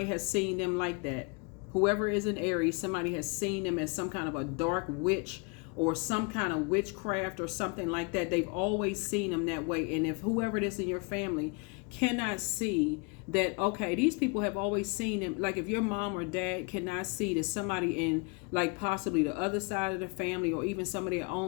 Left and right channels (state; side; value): quieter; right; 31.7 dB